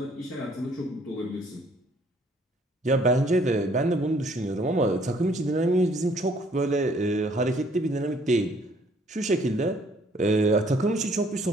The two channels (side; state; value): both; normal; correlation 0.62